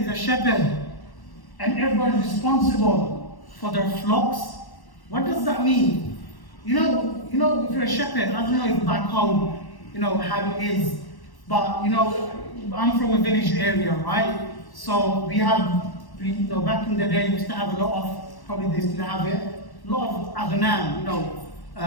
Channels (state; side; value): late; right; 1.1 ms